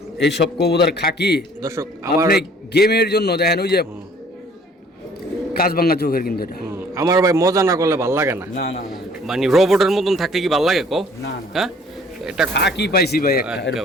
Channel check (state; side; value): normal; both; correlation 0.56